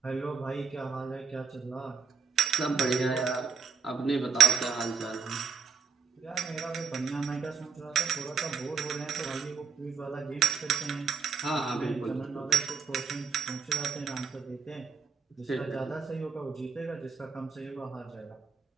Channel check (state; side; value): quieter; left; 5.6 dB